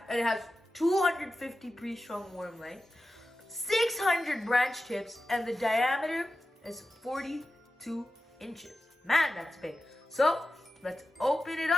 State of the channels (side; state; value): both; normal; correlation 0.93